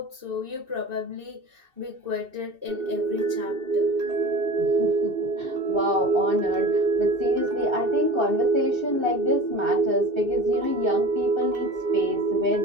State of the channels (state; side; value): late; left; 2.7 ms